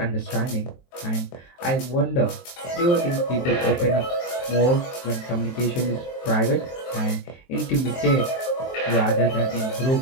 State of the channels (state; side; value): late; right; 23 ms